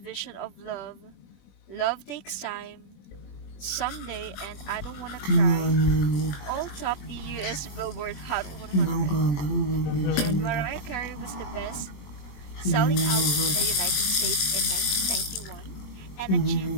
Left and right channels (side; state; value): right; late; 21 ms